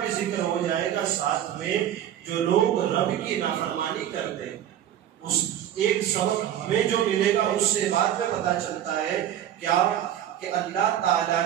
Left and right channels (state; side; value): quieter; left; 10.9 dB